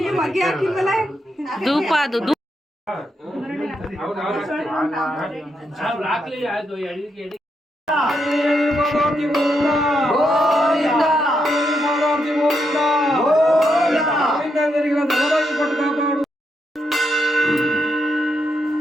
ಮಗ್ಗೆ ಹಾಕಿಲ್ವಲ್ಲ. ಧೂಪ ಅದು ಹಾಕ್ಲಿ ಅದು ಎಡಿಗೆ ಎಡಿ.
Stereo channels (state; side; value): normal; both; correlation 0.81